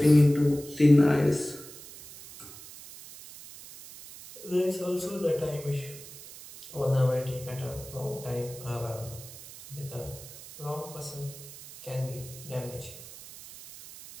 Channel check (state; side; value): noise; right; hiss, 16 dB below the sound